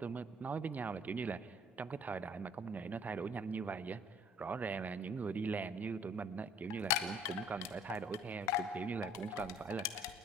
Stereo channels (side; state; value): both; normal; correlation 0.57